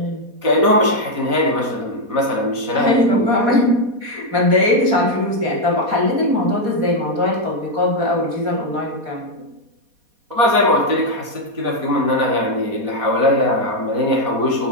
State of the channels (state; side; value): late; left; 4.2 ms